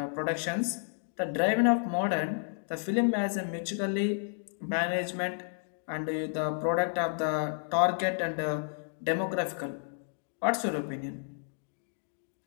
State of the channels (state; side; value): silent; right; digital silence